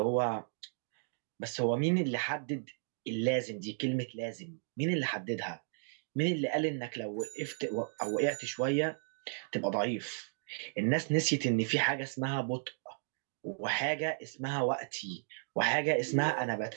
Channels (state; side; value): silent; left; digital silence